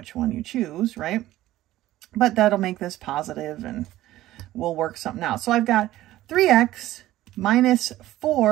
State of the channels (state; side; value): quieter; left; 15.2 dB